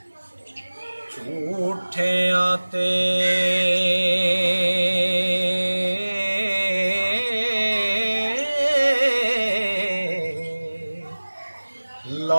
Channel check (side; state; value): both; inverted; correlation -1.00